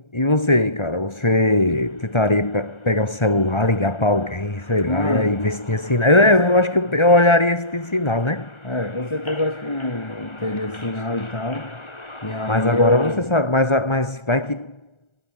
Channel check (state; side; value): late; right; 1.4 ms